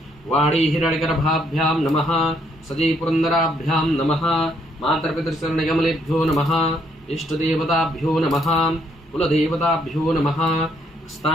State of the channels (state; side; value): normal; both; correlation 0.71